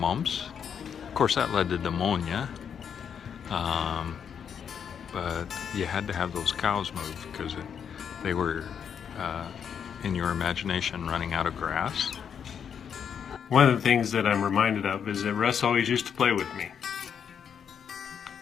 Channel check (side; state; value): right; quieter; 7.7 dB